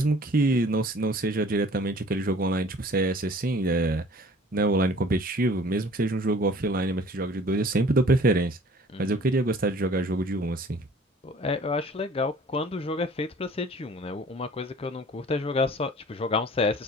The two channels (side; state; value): both; normal; correlation 0.51